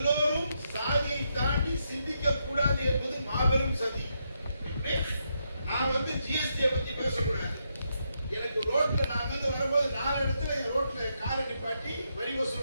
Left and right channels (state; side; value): inverted; both; correlation -0.80